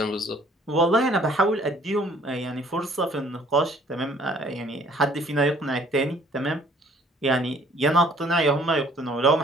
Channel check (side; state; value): both; normal; correlation 0.58